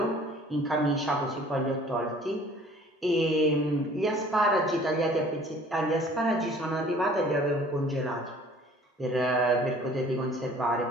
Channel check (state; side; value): normal; both; correlation 0.52